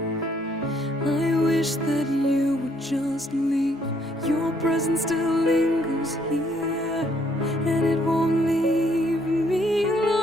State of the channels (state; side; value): normal; both; correlation 0.68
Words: I wish that you would just leave. Your presence still lingers here, and it won't leave me